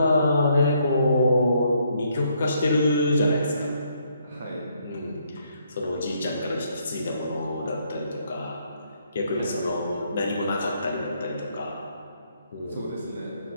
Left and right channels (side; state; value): both; inverted; correlation -0.71